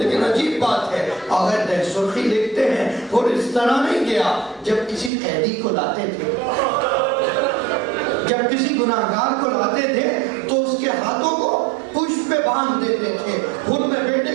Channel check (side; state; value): left; drops out; at 5.1 s